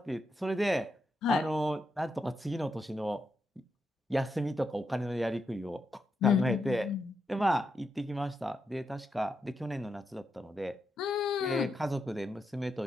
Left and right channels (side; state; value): both; normal; correlation 0.84